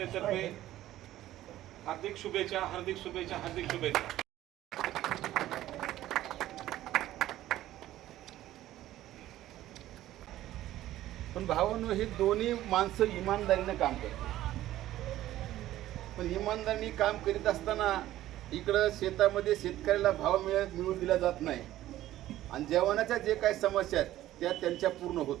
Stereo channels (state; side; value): quieter; left; 14.2 dB